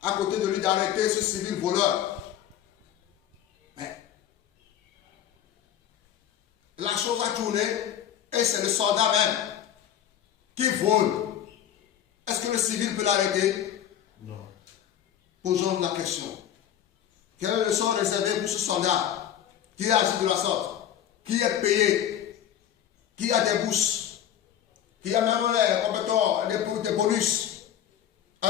à côté de lui d'arrêter ce civil voleur. Mais la chose a tourné et c'est le soldat même qui vole. Est-ce que le civil peut l'arrêter? Non. Posons la question. Quel est le sort réservé pour ce soldat qui agit de la sorte, qui est payé, qui a des bourses, qui a même des bonus,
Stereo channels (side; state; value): right; quieter; 10.4 dB